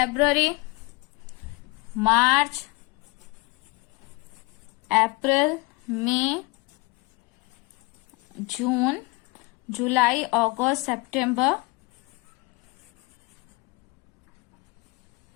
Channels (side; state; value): right; quieter; 25.1 dB